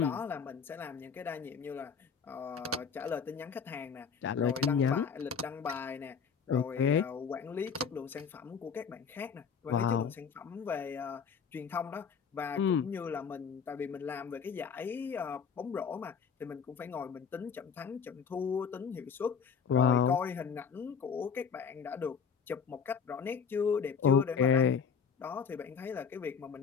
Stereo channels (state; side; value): quieter; right; 6.4 dB